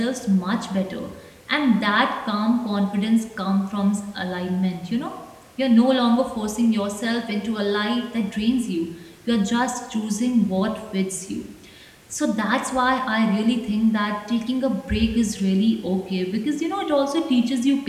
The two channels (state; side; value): identical; both; correlation 1.00